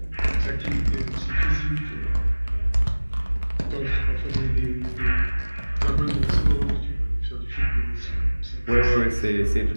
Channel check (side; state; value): both; inverted; correlation -1.00